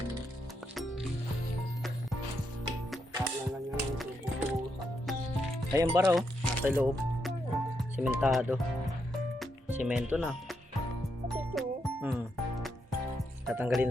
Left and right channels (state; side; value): normal; both; correlation 0.81